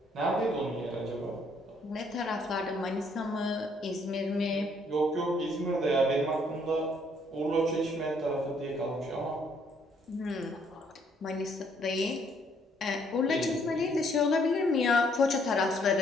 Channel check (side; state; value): both; normal; correlation 0.67